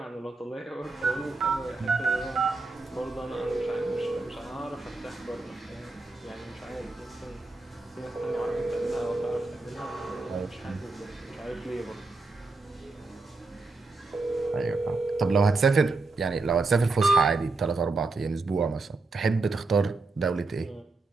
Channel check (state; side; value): quieter; left; 3.6 dB